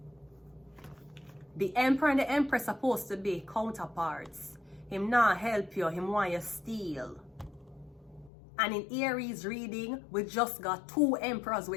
The emperor and the empress supposed to be counterparts. Him not help you, him want your steal. And in Aries reading, we just got 2 emperors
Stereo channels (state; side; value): drops out; right; at 8.3 s